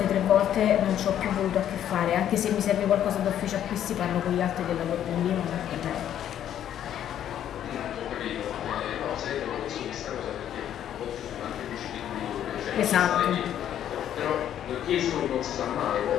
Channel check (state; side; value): quieter; right; 10.5 dB